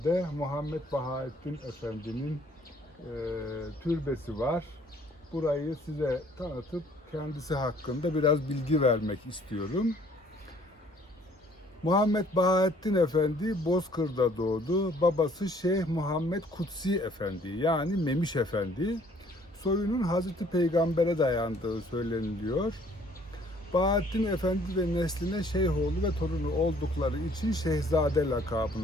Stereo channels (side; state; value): both; normal; correlation 0.59